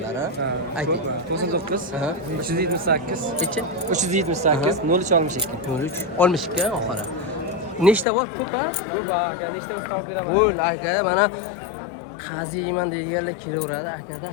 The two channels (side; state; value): right; drops out; at 8.1 s